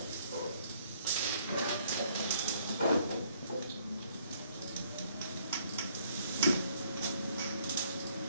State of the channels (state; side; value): inverted; both; correlation -0.65